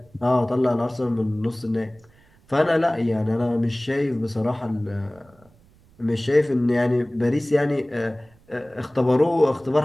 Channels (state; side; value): noise; right; rumble, 30 dB below the sound